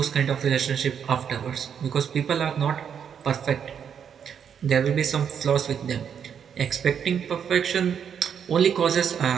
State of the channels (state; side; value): quieter; left; 7.8 dB